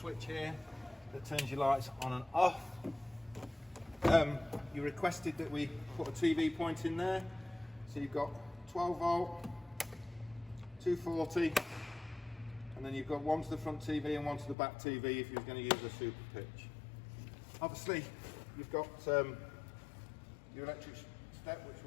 here that turns your lights on and off. You requested that we put a TV point in there, so you've got 12 volt, 240, and then you've got one to the front TV and one to the back TV if you're going to use a super pitch. Obviously you've got your electric step, which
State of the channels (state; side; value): drops out; right; at 14.6 s